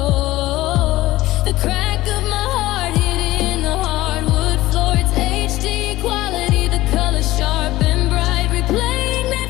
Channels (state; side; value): quieter; right; 16.9 dB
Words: the crack of my heart hitting the hardwood floor. It's HD quality, the color sharp and bright, replaying that